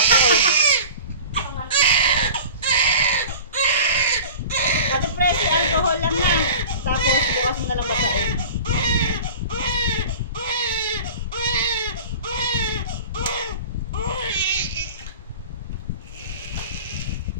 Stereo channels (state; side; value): inverted; both; correlation -0.39